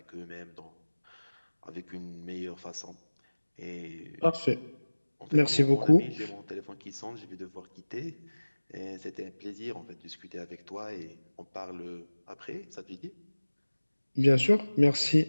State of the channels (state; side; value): inverted; both; correlation -1.00